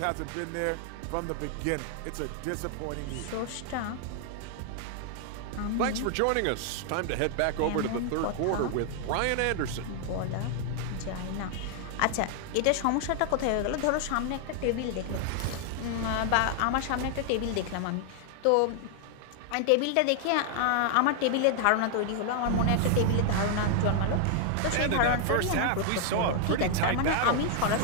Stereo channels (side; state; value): both; different; correlation 0.00